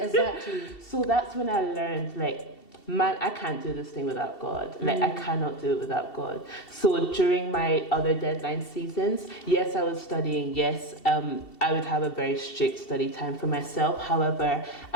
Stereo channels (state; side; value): late; right; 2.7 ms